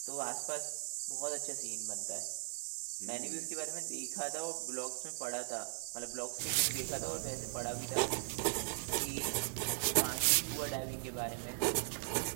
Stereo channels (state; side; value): silent; left; digital silence